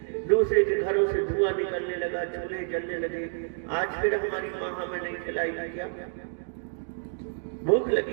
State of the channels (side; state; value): left; silent; digital silence